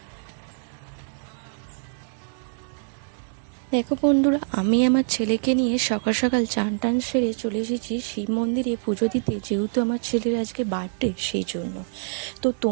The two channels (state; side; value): silent; left; digital silence